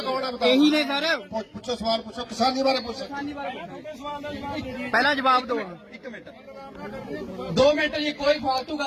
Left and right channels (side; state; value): both; identical; correlation 1.00